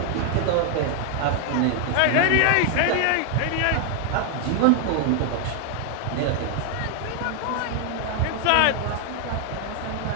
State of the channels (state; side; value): different; both; correlation 0.00